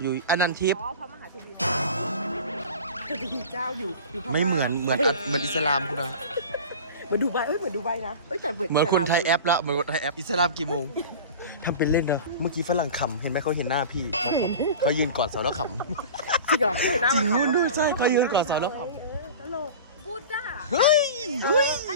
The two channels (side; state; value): both; inverted; correlation -0.35